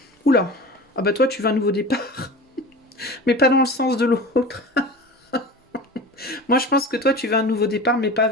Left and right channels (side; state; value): both; normal; correlation 0.35